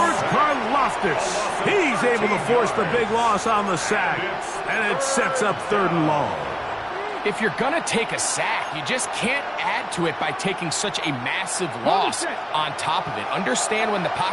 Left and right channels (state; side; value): identical; both; correlation 1.00